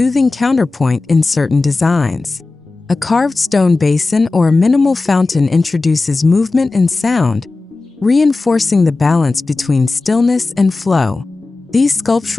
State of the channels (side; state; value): right; quieter; 3.5 dB